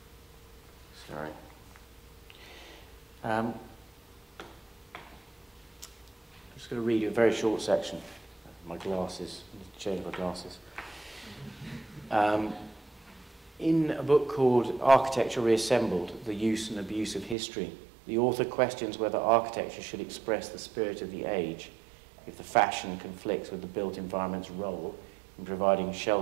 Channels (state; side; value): drops out; left; at 17.4 s